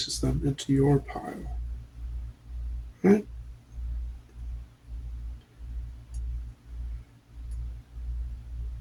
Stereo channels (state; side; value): identical; both; correlation 1.00